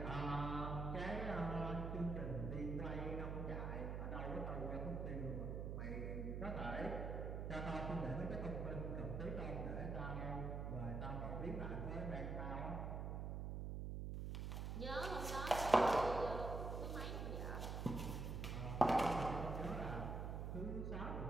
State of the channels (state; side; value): noise; right; hum, 2 dB below the sound